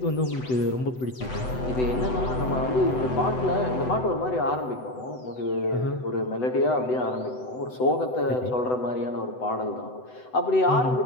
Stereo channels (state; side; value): late; right; 7.9 ms